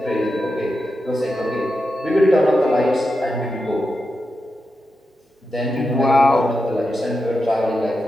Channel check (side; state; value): both; normal; correlation 0.89